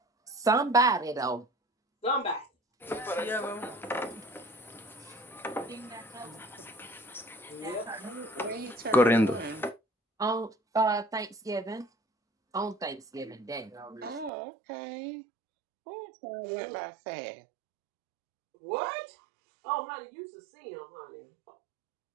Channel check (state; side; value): drops out; left; at 14.3 s